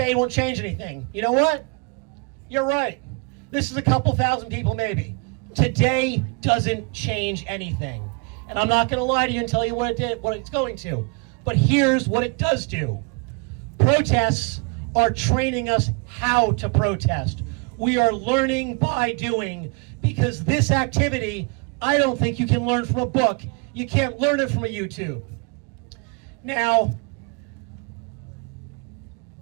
won't change anything. You know what? You're right. This is a couple thousand people maybe. Today doesn't change anything. And I'm not going to lie to you and tell you what it's going to. But here's what it does do. Protests are training us how to protest. We are learning by doing, because this activity, I don't think you can learn from a book. You can't learn it from a YouTube. Now,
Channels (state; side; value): quieter; left; 31.9 dB